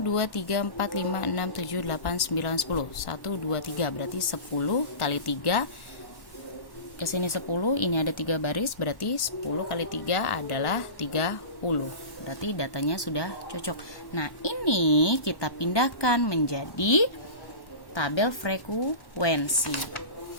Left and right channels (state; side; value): late; right; 1.1 ms